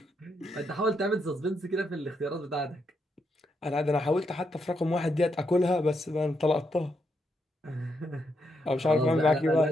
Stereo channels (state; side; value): normal; both; correlation 0.80